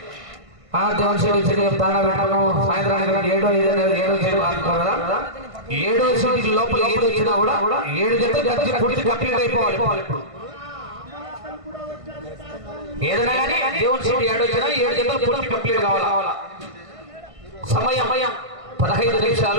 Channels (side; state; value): left; late; 1.5 ms